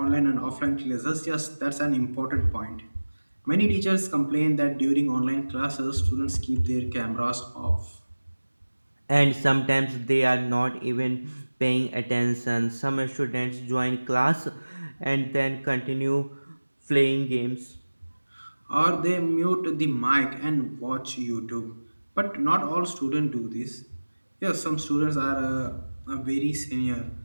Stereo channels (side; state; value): both; inverted; correlation -1.00